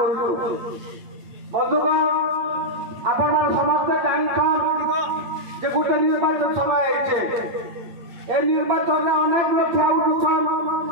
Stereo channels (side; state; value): left; late; 8.9 ms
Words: बंधुगण आपण समस्त जानिछन जे गोटे निर्वाचन समय आइछे ए निर्वाचन में अनेक लोग ठिया